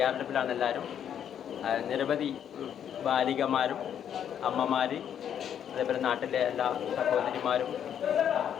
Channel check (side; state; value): right; quieter; 9.2 dB